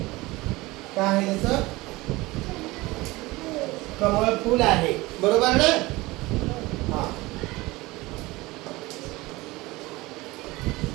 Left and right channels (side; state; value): left; quieter; 21.0 dB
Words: काय आहे? त्याचं कमळ फूल आहे, बरोबर ना? हा।